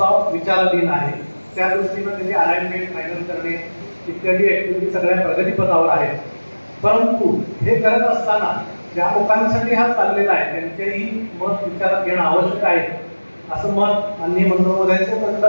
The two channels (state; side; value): inverted; both; correlation -1.00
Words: विचाराधीन आहे. त्या दृष्टीनं त्याची अलाइनमेंट फायनल करणे इत्यादी ऍक्टिव्हिटी सगळ्या प्रगतीपथावर आहेत. परंतु हे करत असताना ज्या लोकांसाठी हा चाललेला आहे त्यांचेही मत विचारात घेणं आवश्यक आहे, असं मत माननीय मंत्रिमहोदयांचं